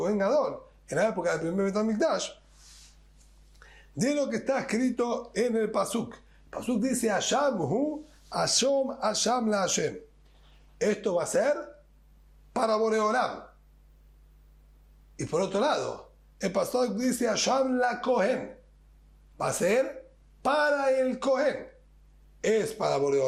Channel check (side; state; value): both; identical; correlation 1.00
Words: Gadol, en la época del primer Bet HaMikdash, de lo que está escrito en el Pasuk. El Pasuk dice, Hasham hu, Hasham la Hashem. Esto va a ser para Borei Olam. Y por otro lado, el Pasuk dice, Hasham la Kohen. Va a ser para el Kohen. ¿Es para Borei